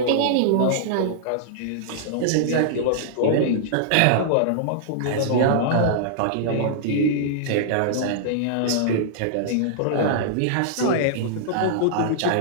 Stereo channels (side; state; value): both; different; correlation -0.02